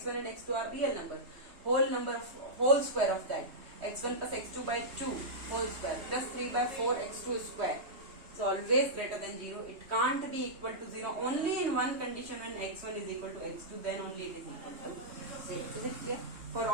and x2 are real numbers, whole square of that, x1 plus x2 by 2 whole square plus 3 by 4 x2 square is always greater than 0. It can't be equal to 0. Only in one condition, when x1 is equal to x2, then only it is equal to 0. Is it clear? For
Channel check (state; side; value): late; left; 3.2 ms